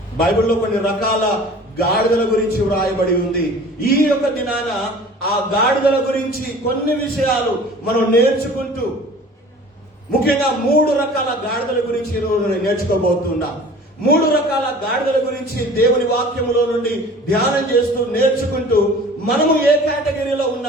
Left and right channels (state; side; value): normal; both; correlation 0.45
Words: ఉంది. ఈ యొక్క దినాన ఆ గాడిదల గురించి కొన్ని విషయాలు మనం నేర్చుకుంటూ, ముఖ్యంగా 3 రకాల గాడిదల గురించి నేర్చుకోబోతున్నా. 3 రకాల గాడిదల గురించి దేవుని వాక్యములో నుండి ధ్యానం చేస్తూ నేర్చుకుంటూ, మనము ఏ కేటగిరీలో